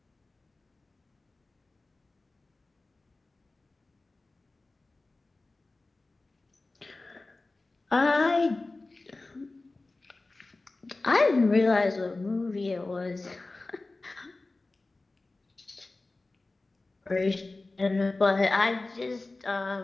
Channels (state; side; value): quieter; right; 3.2 dB